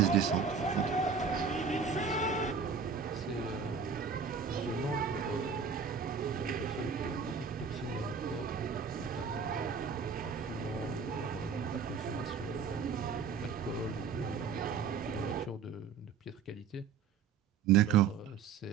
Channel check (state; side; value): quieter; left; 6.0 dB